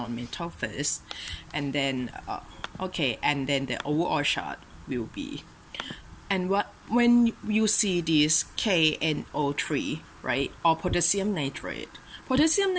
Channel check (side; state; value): both; identical; correlation 1.00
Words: first, and then okay, and then the overall chart will be, and when you see this KNO3, right, or potassium nitrate,